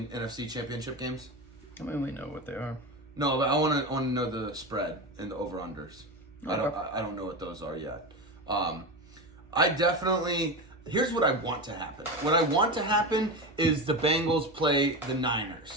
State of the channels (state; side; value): normal; both; correlation 0.21